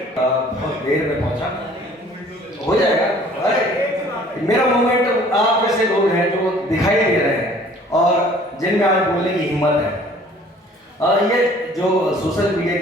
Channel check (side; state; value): both; normal; correlation 0.53